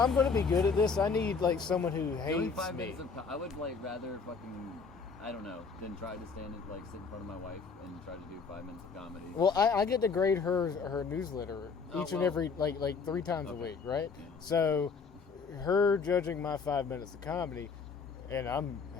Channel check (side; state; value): right; quieter; 5.1 dB